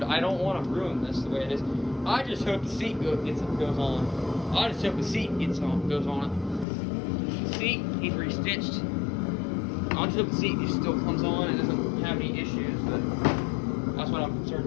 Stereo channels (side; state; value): right; drops out; at 6.7 s